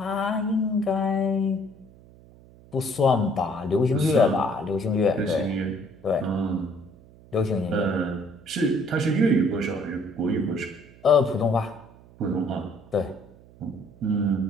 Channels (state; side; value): noise; right; hum, 24 dB below the sound